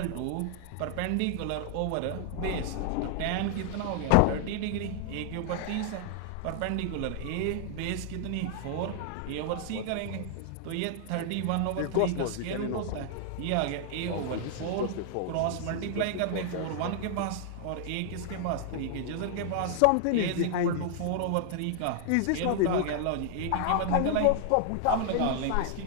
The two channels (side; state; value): both; different; correlation 0.00